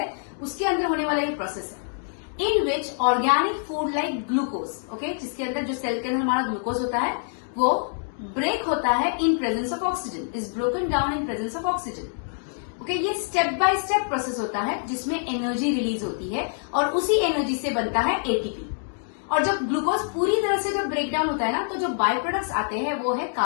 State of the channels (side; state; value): right; silent; digital silence